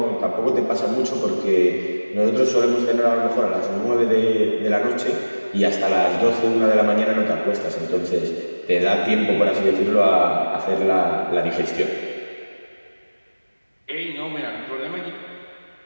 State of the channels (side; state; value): both; inverted; correlation -1.00